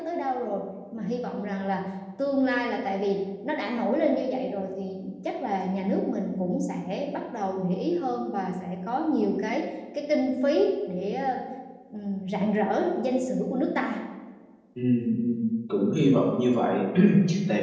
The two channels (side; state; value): both; identical; correlation 1.00